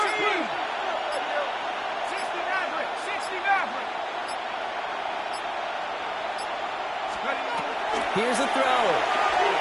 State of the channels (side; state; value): both; identical; correlation 1.00